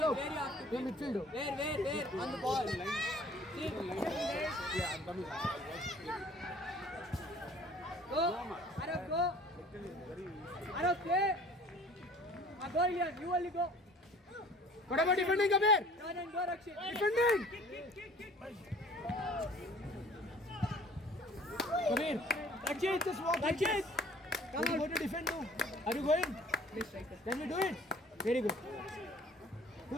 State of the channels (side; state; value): both; normal; correlation 0.51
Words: you're midfielder. Where? On the ball. Sit. Go. Arav, go. Arav, play. Go, Ilian. You only go. What about defending, Kabir? Turn and go, Rakshit. Defending! Kabir, Rakshit, just walk. Rakshit! Come on. Go to defend now. Are you going? Can we do it? Very good.